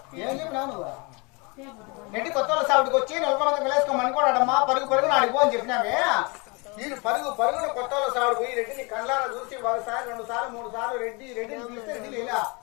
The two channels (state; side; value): quieter; right; 29.6 dB